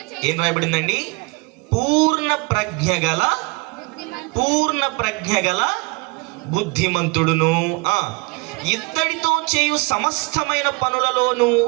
ఏం రాయబడిందండి? పూర్ణ ప్రజ్ఞ గల బుద్ధిమంతుడును. ఇత్తడితో చేయు సమస్తమైన పనులలోను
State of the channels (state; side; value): quieter; left; 28.2 dB